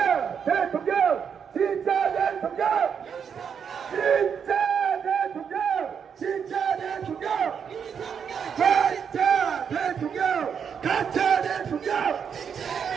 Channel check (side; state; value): left; quieter; 7.2 dB